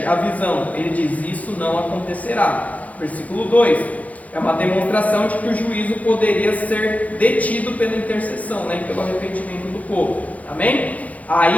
a visão, ele diz: isso não acontecerá. Versículo 2, é uma demonstração de que o juízo poderia ser detido pela intercessão, né, pelo arrependimento do povo. Amém?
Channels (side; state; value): right; late; 0.071 ms